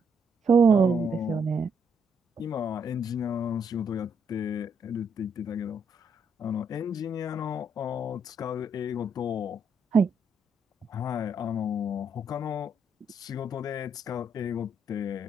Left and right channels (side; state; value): both; normal; correlation 0.74